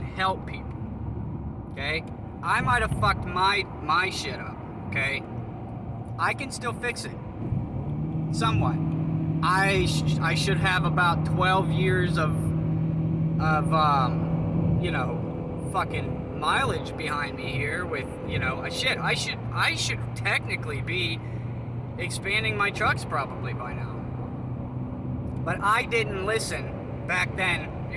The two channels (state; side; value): identical; both; correlation 1.00